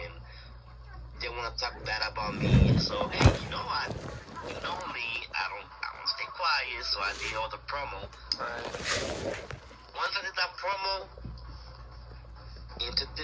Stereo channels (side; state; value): both; identical; correlation 1.00